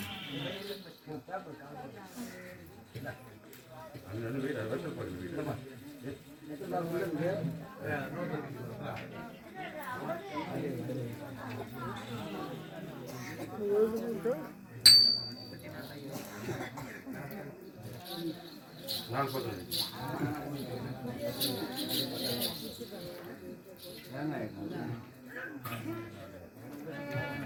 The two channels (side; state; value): both; identical; correlation 1.00